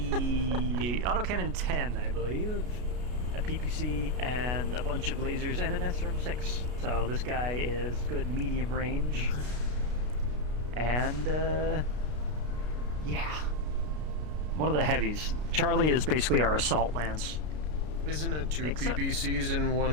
autocannon 10, I believe, a PPC, and a bunch of lasers, and an SRM-6. So this guy is good medium range. And, yeah. One of the heavies. Charlie is basically our assault lance. Isn't it 2 PPCs in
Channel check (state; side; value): late; left; 33 ms